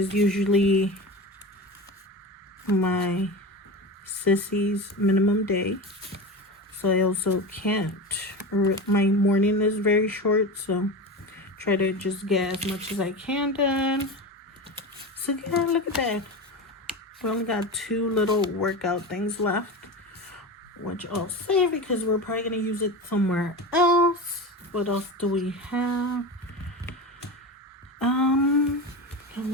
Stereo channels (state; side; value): normal; both; correlation 0.26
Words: usually my sissy's minimum day. So I also can't. My morning is very short, so try to just get as much as I can done. So yeah, look at that. We only got 2 little workout things left, which I'll save because we're probably going to use it somewhere else. What else do we have? Let